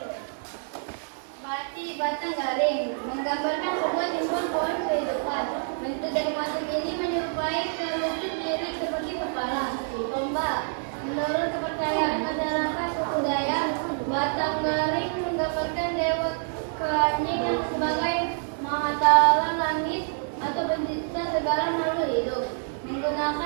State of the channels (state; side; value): silent; left; digital silence